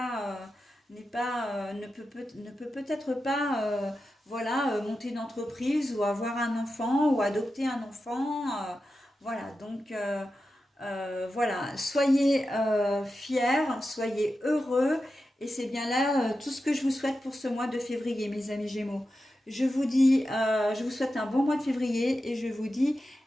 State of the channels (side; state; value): both; normal; correlation 0.91